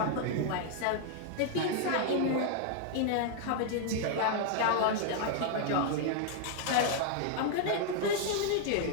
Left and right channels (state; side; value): different; both; correlation 0.00